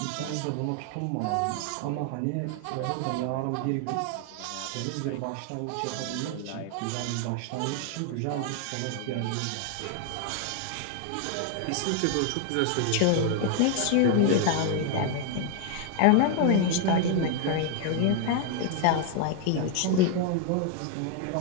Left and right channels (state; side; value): different; both; correlation 0.00